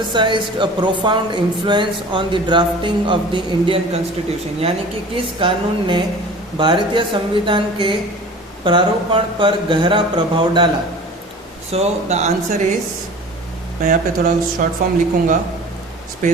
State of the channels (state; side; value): normal; both; correlation 0.41